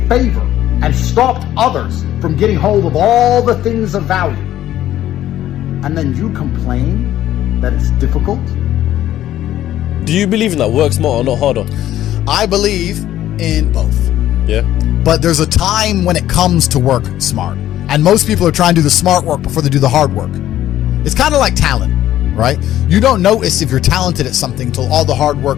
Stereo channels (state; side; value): quieter; right; 12.8 dB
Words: favor and stopped others from getting hold of all the things of value. And then you complain that it's difficult? Do you believe in that? Work smarter, not harder? I believe in both. Yeah. But there's a time when it comes to work smart. And most people are trying to do the smart work before they do the hard work. It's kind of like talent, right? You don't notice if you're talented at something until all the hard